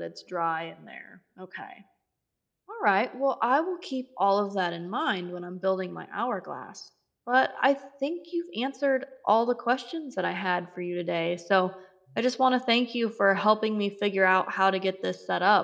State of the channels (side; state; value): both; identical; correlation 1.00